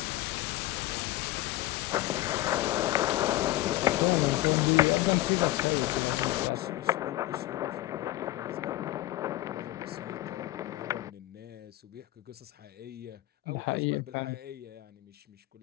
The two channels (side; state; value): right; quieter; 16.1 dB